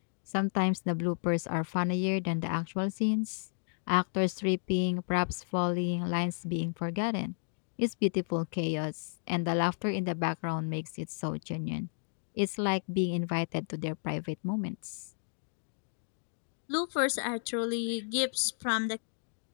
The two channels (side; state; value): right; silent; digital silence